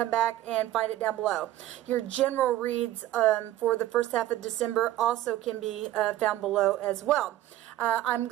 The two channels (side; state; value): left; quieter; 14.3 dB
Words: back and find it down below. Your general reads for the first half of December also can be found below as well. I'm